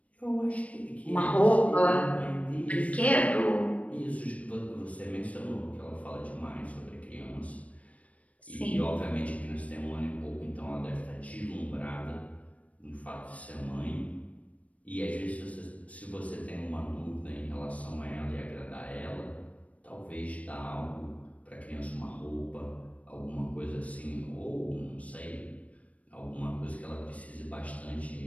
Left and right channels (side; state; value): right; late; 0.067 ms